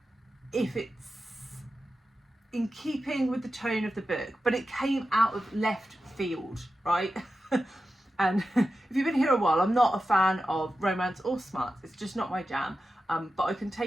if it's in keeping with the tone of the book, but it came out of left field, right? And if you've been here a while, I'm not a fan of romance or smarts. It's just not my jam. But I can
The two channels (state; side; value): normal; both; correlation 0.91